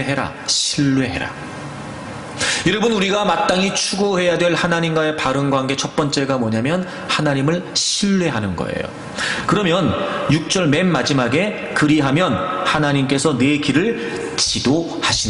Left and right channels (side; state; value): both; identical; correlation 1.00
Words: 여러분 우리가 마땅히 추구해야 될 하나님과의 바른 관계 첫 번째가 뭐냐면 하나님을 신뢰하는 거예요. 그러면 6절 맨 마지막에 그리하면 하나님께서 내 길을